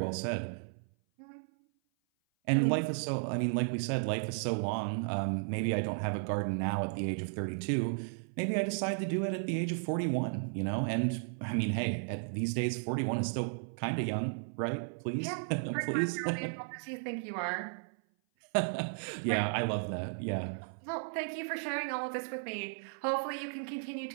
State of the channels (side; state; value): left; silent; 55 dB below the other